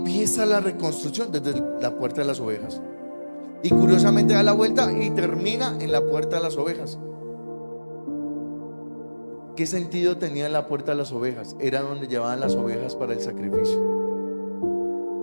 la reconstrucción desde la puerta de las ovejas. Y curiosamente da la vuelta y termina en la puerta de las ovejas. ¿Qué sentido tenía la puerta de las ovejas? Era donde llevaban las ovejas para el sacrificio.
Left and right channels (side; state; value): both; inverted; correlation -1.00